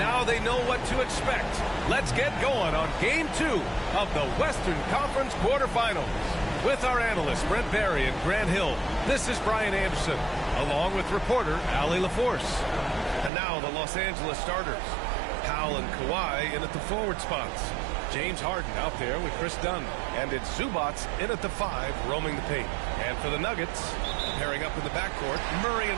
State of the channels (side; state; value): left; drops out; at 13.3 s